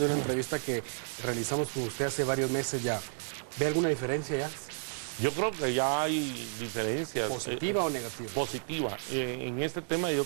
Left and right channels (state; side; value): silent; left; digital silence